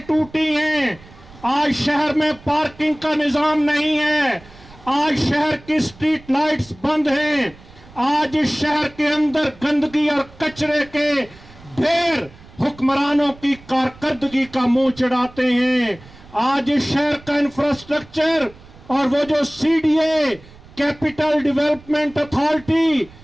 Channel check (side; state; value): right; noise; rumble, 22 dB below the sound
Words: ٹوٹی ہیں, آج شہر میں پارکنگ کا نظام نہیں ہے, آج شہر کی سٹریٹ لائٹس بند ہیں, آج اس شہر کے اندر گندگی اور کچرے کے ڈھیر حکمرانوں کی کارکردگی کا منہ چڑھاتے ہیں. آج اس شہر کا انفراسٹرکچر اور وہ جو CDA کیپٹل ڈیولپمنٹ اتھارٹی